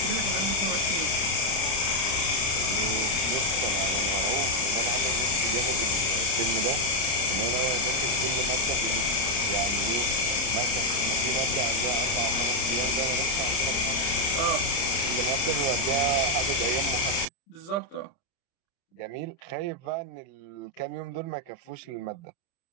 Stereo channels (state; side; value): late; right; 30 ms